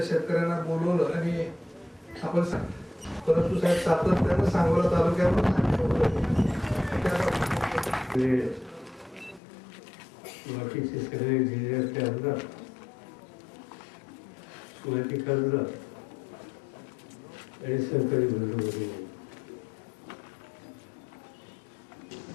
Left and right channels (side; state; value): right; drops out; at 9.4 s